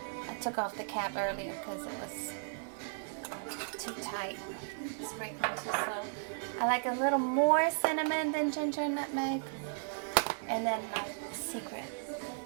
I took off the cap earlier because it was too tight. break them too slow. I like a little more cinnamon than ginger and nutmeg. And then my secret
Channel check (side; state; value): left; silent; 54 dB below the other